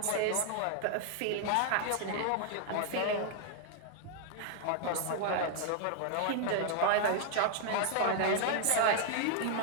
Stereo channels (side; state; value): both; different; correlation 0.00